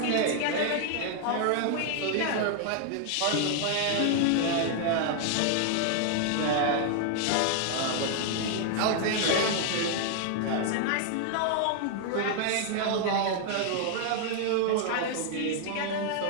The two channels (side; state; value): both; different; correlation 0.00